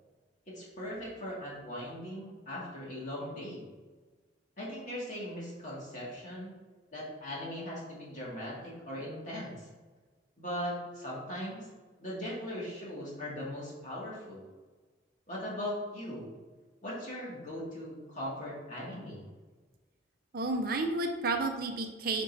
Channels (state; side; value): normal; both; correlation 0.21